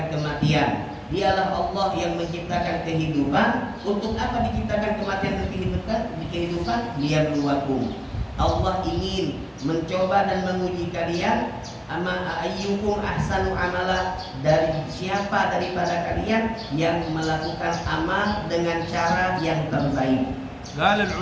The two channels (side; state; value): both; identical; correlation 1.00